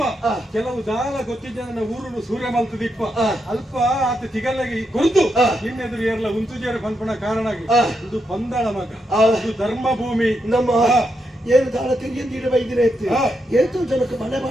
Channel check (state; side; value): normal; both; correlation 0.82